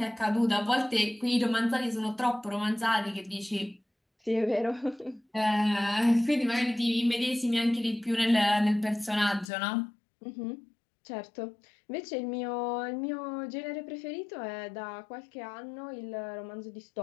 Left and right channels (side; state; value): right; drops out; at 9.5 s